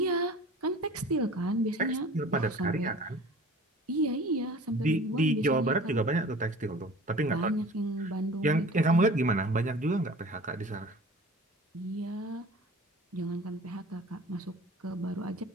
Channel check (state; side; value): normal; both; correlation 0.43